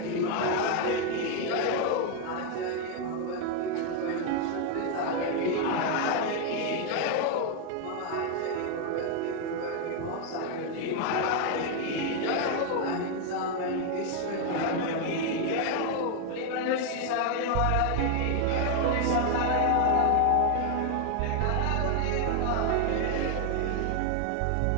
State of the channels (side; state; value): both; different; correlation 0.01